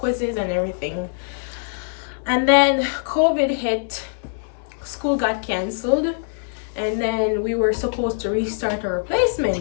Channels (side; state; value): right; silent; 64 dB below the other